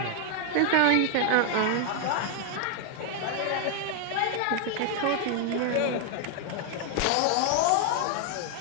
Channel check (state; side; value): different; both; correlation 0.00